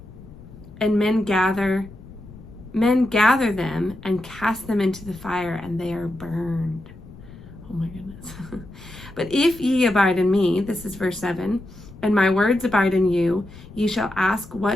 And men gather them, and cast them into the fire, and they are burned. Oh my goodness. But if ye abide in me, this is verse 7, and my words abide in you, ye shall ask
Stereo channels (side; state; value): left; noise; rumble, 19 dB below the sound